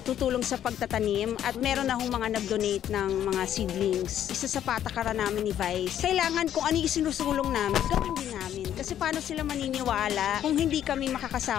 tutulong sa pagtatanim, at meron na hong mga nag-donate ng mga seedlings. Isa sa patakaran namin ni Vice, kailangan kung ano yung isinusulong namin, gawin din namin. Kasi paano sila maniniwala kung hindi kami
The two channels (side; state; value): right; quieter; 10.7 dB